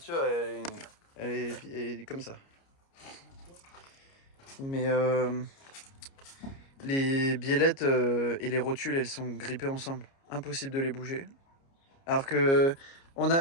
elle est comme ça. Mais les biellettes et les rotules, elles sont grippées ensemble. Impossible de les bouger. Alors que on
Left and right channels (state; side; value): late; right; 29 ms